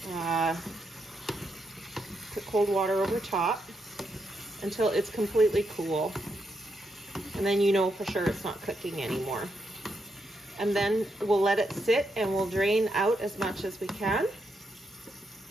put cold water over top until it's completely cool. And then you know for sure it's not cooking anymore. And then we'll let it sit and we'll drain out as much as we can.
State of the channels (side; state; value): both; normal; correlation 0.81